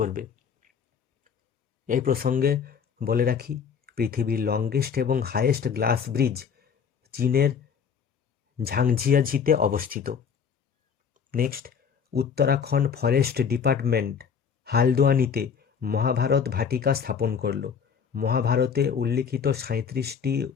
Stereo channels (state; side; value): quieter; right; 6.8 dB